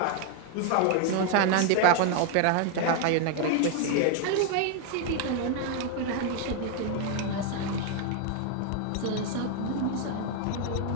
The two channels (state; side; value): different; both; correlation 0.00